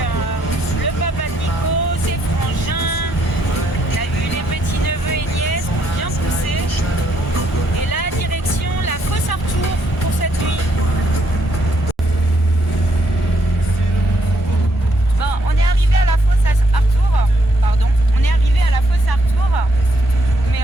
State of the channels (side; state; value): both; normal; correlation 0.73